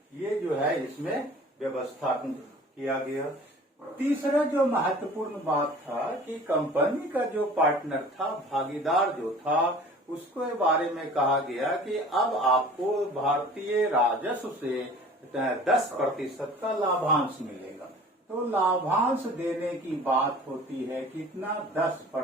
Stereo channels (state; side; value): normal; both; correlation 0.45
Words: ये जो है इसमें व्यवस्था किया गया। तीसरा जो महत्वपूर्ण बात था कि कंपनी का जो पार्टनर था, भागीदार जो था, उसके बारे में कहा गया कि अब आपको भारतीय राजस्व से 10% का लाभांश मिलेगा। तो लाभांश देने की बात होती है कितना,